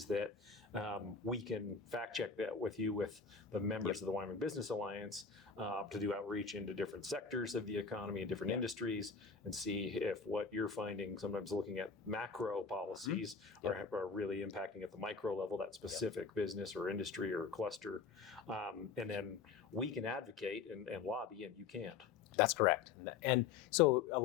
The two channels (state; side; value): quieter; right; 5.6 dB